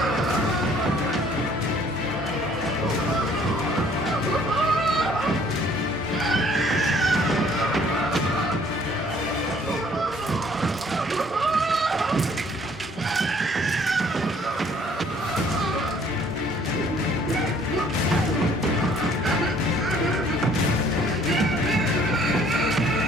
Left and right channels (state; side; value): normal; both; correlation 0.59